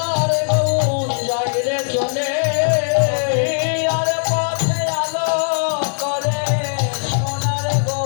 গৌর যাই রে চলে আর পথে আলো করে সোনার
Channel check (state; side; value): silent; right; digital silence